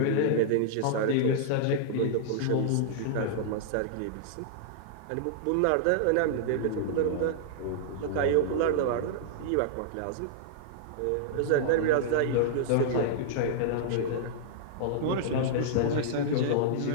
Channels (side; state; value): both; different; correlation -0.01